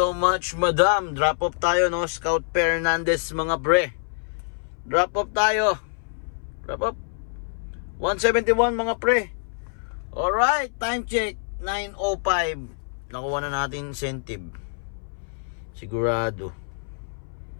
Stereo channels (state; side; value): silent; right; 61 dB below the other